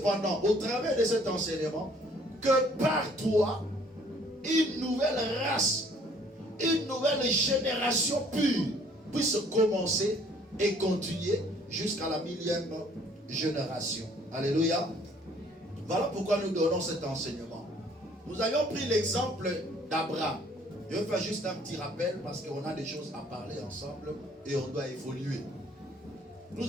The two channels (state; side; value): normal; both; correlation 0.59